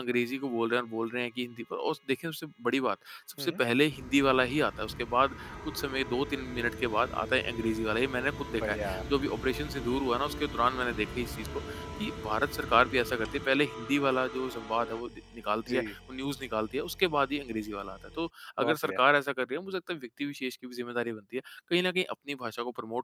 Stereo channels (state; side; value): identical; both; correlation 1.00